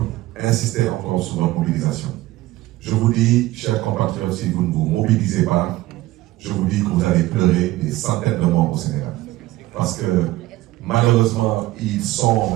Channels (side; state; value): left; quieter; 17.3 dB